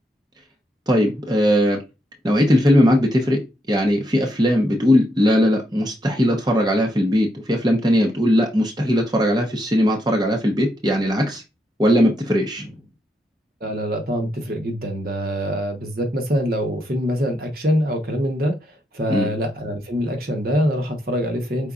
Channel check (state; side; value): normal; both; correlation 0.79